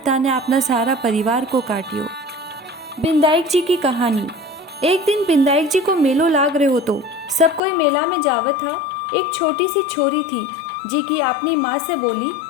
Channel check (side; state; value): right; drops out; at 7.6 s